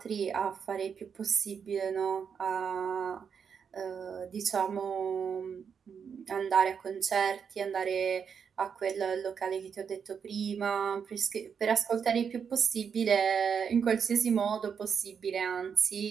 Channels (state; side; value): quieter; left; 6.8 dB